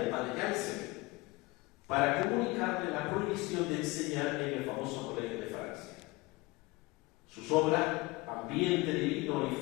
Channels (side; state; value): right; quieter; 23.0 dB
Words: el padre Janssen, para comunicarle la prohibición de enseñar en el famoso Colegio de Francia. Sus obras, Ambiente divino y